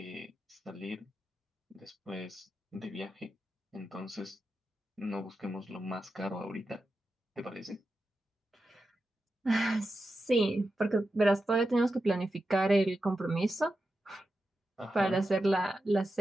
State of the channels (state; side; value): normal; both; correlation 0.90